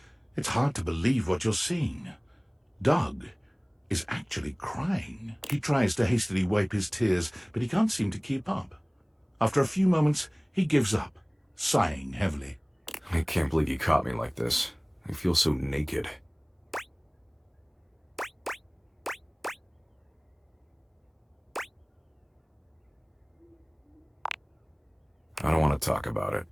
It's hard to believe what you're seeing. Doug is actually crying. He tries to hastily wipe his tears, but he can't seem to keep up. After a few moments, he gives up, sighing heavily. I can't believe you caught me like this. I feel so naked. want to talk about it.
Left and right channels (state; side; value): identical; both; correlation 1.00